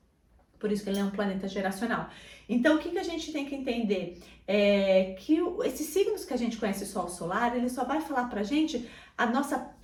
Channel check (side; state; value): both; identical; correlation 1.00